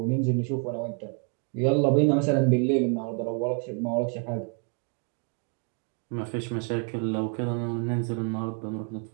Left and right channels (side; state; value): left; quieter; 39.5 dB